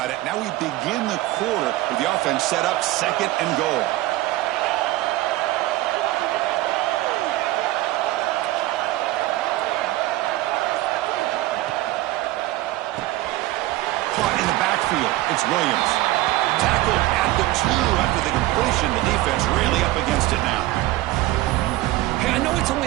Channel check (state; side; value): quieter; left; 17.1 dB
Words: it. Now we begin the quarter with the offense set up second and goal. Caught in the backfield. It's Williams. Tackled at the 2 after the completion. The defense really up against it now. Hey, I know it's only